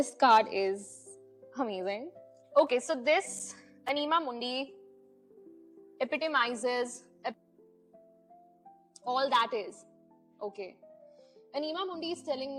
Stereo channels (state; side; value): identical; both; correlation 1.00